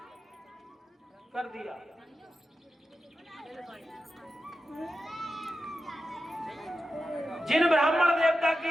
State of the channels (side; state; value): both; normal; correlation 0.91